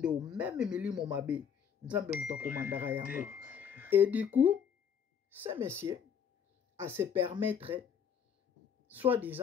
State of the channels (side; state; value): right; quieter; 7.6 dB